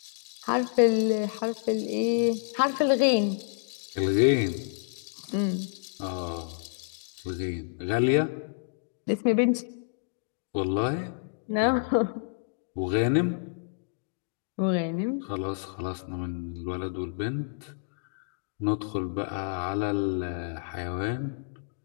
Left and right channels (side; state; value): right; silent; digital silence